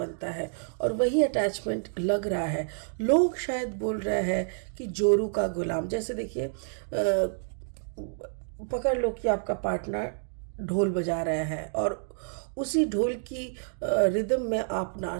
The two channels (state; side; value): silent; left; digital silence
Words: है। और वही अटैचमेंट लग रहा है, लोग शायद बोल रहे हैं कि जोरू का गुलाम। जैसे देखिए पकड़ लो कि आपका पार्टनर ढोल बजा रहे हैं और उसी ढोल की रिदम में आप